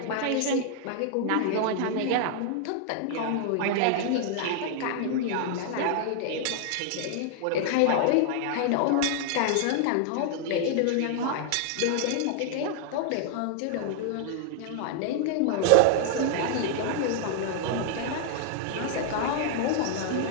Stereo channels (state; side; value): different; both; correlation 0.00